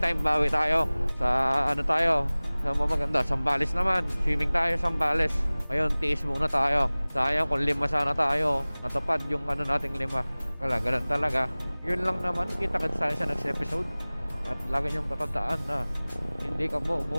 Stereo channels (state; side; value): inverted; both; correlation -1.00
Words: bawi tayo. Sa tayo? Sa maganda, Sambales naman. Swimming tayo Sambales. Ngayon, tiis muna tayo. Sayang kung 5 sana tayo. Natupad yung nating 5. Wala, ganun talaga. Yun lang naman. Kita-kits tayo sa next episode. At lagi niyong tatandaan na hindi ka